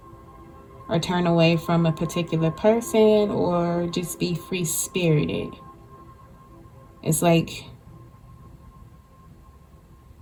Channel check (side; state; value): both; identical; correlation 1.00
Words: or turn away from a particular person or just be free spirited. It's like